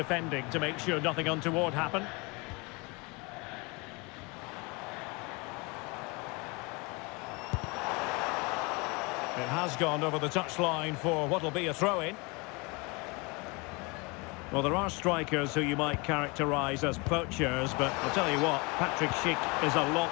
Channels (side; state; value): right; quieter; 28.0 dB